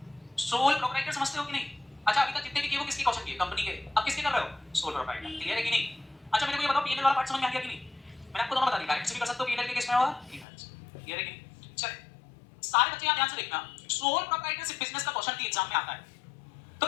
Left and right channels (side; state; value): right; drops out; at 10.5 s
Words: सोल प्रोप्राइटर समझते हो कि नहीं? अच्छा अभी तक जितने भी किए वो किसके क्वेश्चन किए? कंपनी के। अब किसके कर रहे हो? Sole proprietor. क्लियर है कि नहीं? अच्छा मेरे को ये बताओ पीएनएल वाला पार्ट समझ में आ गया कि नहीं? मैंने आपको दोनों बता दिया। डायरेक्ट से भी कर सकते हो पीएनएल के केस में और क्लियर है कि नहीं? चल सारे बच्चे यहां ध्यान से देखना। सोल प्रोप्राइटरशिप बिजनेस का क्वेश्चन भी एग्जाम में आता है। तो